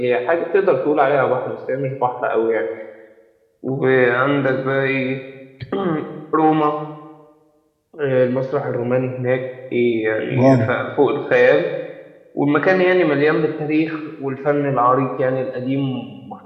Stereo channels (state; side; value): identical; both; correlation 1.00